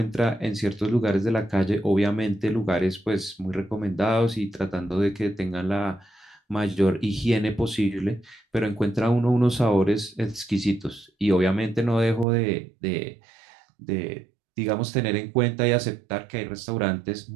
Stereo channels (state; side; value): drops out; left; at 12.2 s